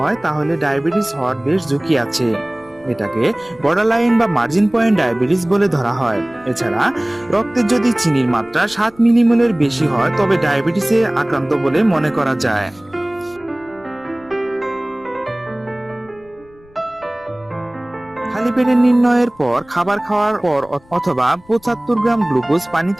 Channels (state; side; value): noise; left; rumble, 28 dB below the sound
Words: তাহলে ডায়াবেটিস হওয়ার বেশ ঝুঁকি আছে। এটাকে বর্ডারলাইন বা মার্জিন পয়েন্ট ডায়াবেটিস বলে ধরা হয়। এছাড়া রক্তে যদি চিনির মাত্রা 7 মিলিমোলের বেশি হয় তবে ডায়াবেটিসে আক্রান্ত বলে মনে করা যায়। খালি পেটে নির্ণয়ের পর খাবার খাওয়ার পর অথবা 75 গ্রাম গ্লুকোজ